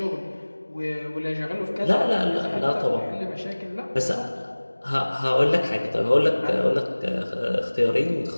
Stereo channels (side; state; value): both; inverted; correlation -1.00